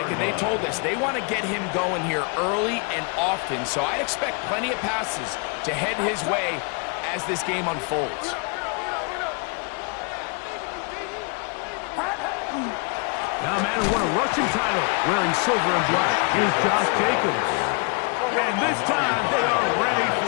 and they told us they want to get him going here early and often. So I expect plenty of passes to head his way as this game unfolds. Now a man who won a rushing title wearing silver and black is Josh Jacobs. And this time they are ready for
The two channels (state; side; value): quieter; right; 34.4 dB